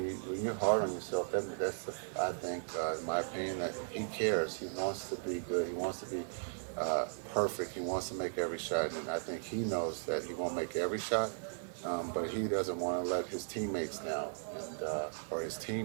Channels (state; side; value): silent; left; digital silence